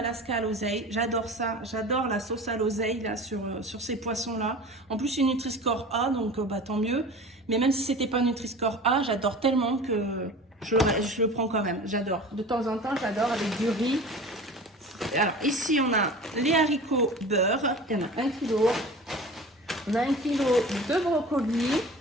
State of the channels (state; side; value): normal; both; correlation 0.37